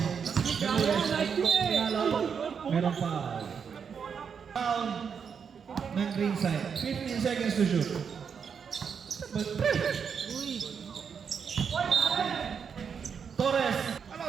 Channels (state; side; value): quieter; left; 6.7 dB